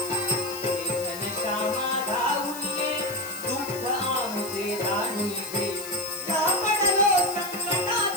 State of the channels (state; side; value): noise; left; hiss, 12 dB below the sound